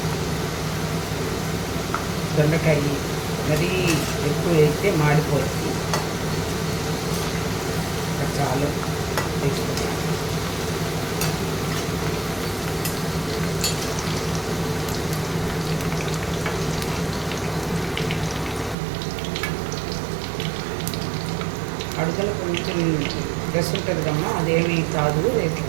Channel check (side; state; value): left; drops out; at 18.8 s